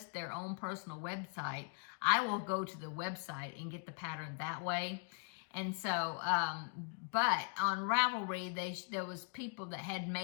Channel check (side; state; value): right; quieter; 39.5 dB